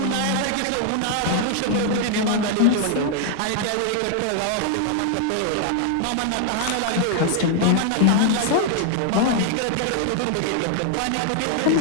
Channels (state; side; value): different; both; correlation 0.00